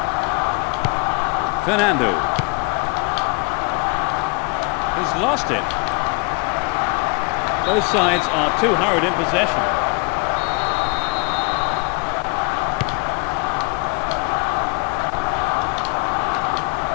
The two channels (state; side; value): quieter; right; 29.2 dB